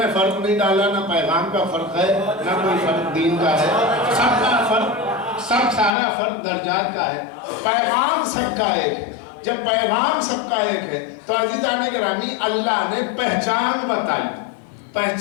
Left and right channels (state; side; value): drops out; right; at 5.9 s